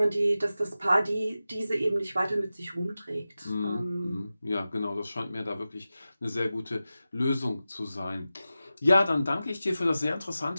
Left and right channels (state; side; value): inverted; both; correlation -0.94